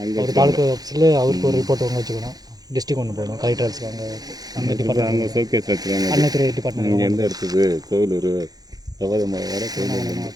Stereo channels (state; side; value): late; left; 0.19 ms